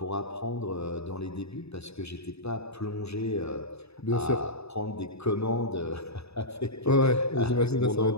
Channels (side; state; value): right; late; 0.79 ms